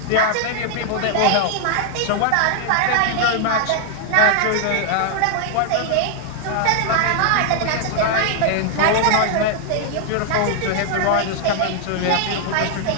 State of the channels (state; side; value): different; both; correlation 0.00